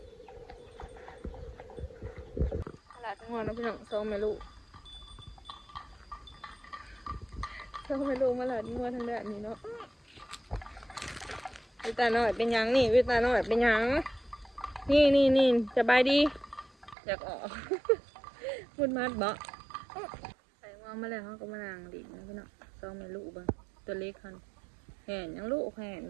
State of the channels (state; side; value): drops out; left; at 16.9 s